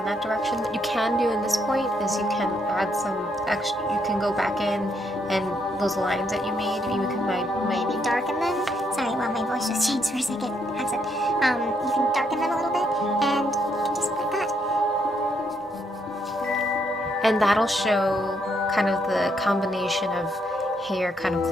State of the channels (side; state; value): both; normal; correlation 0.74